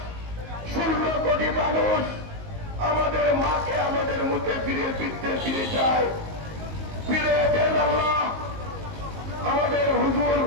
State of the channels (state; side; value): late; left; 19 ms